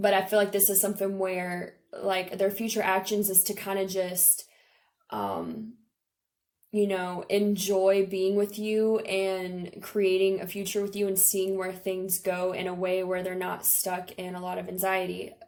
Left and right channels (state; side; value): identical; both; correlation 1.00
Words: I feel like this is something where like their future actions is to kind of just, enjoy being with you and creating a future with you and seeing where things go in a way where they're not stuck in a lot of anxiety